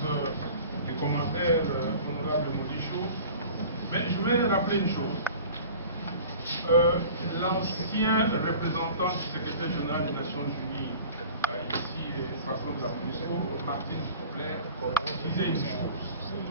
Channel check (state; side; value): inverted; both; correlation -0.43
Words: des commentaires, honorable Modicho. Mais je voulais rappeler une chose. L'ancien représentant du secrétaire général des Nations Unies, ici, Strasbourg de la MONUSCO, Martine Kobler, disait